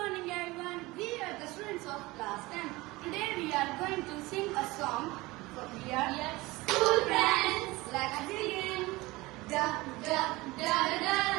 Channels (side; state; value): left; quieter; 21.1 dB